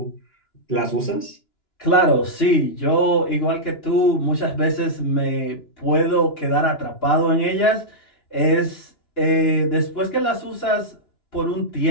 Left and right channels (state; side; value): late; right; 2.9 ms